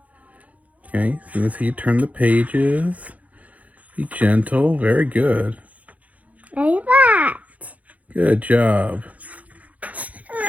Okay, so let's see you turn the pages. Be gentle. Very good. Like that. Good job.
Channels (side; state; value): left; late; 0.071 ms